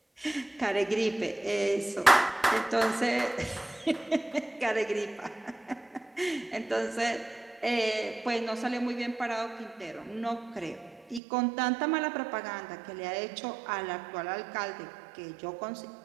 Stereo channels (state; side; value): drops out; left; at 11.2 s